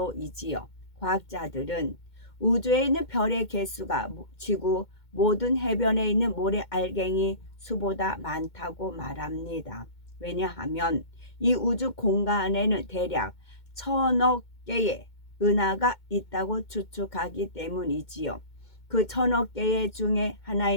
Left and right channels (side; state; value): right; late; 2.2 ms